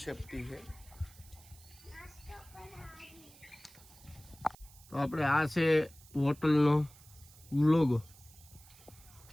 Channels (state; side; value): noise; right; hiss, 23 dB below the sound